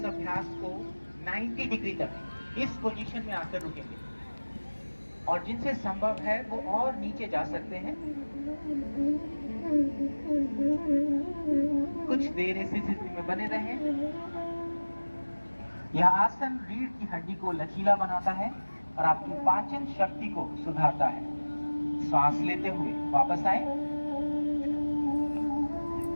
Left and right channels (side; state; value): both; inverted; correlation -1.00